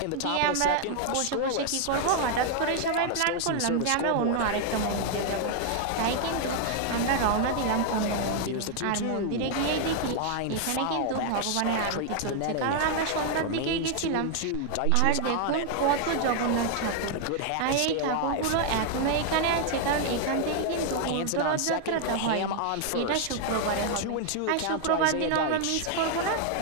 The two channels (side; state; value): both; different; correlation 0.00